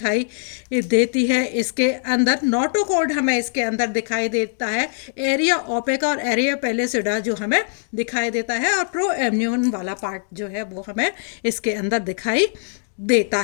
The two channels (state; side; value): silent; right; digital silence